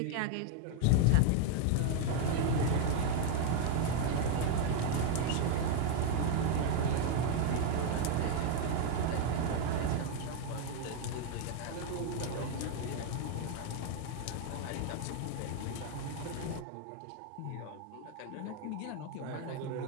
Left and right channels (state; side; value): different; both; correlation 0.00